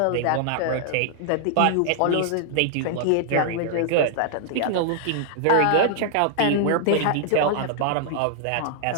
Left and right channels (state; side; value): different; both; correlation 0.00